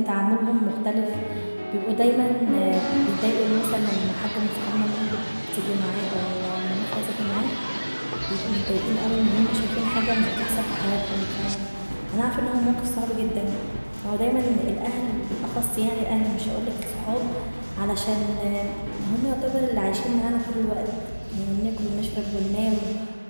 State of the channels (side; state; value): both; inverted; correlation -1.00